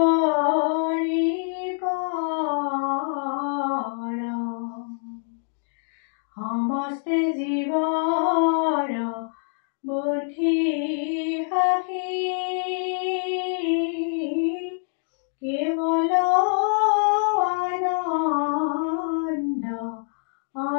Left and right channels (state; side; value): silent; right; digital silence